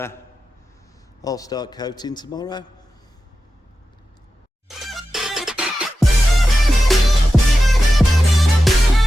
start coating tomorrow.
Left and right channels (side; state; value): both; normal; correlation 0.92